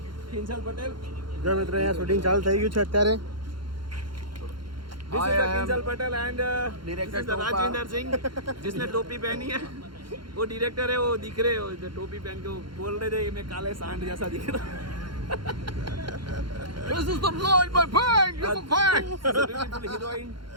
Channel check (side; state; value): left; late; 0.72 ms